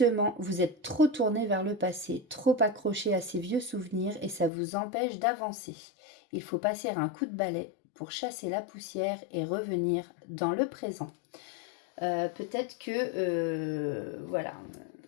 vous êtes trop tourné vers le passé, trop accroché à ces vieux souvenirs et ça vous empêche d'avancer. Il faut passer un coup de balai pour chasser la poussière et revenir dans le présent. Peut-être que, voilà,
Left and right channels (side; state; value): right; drops out; at 4.5 s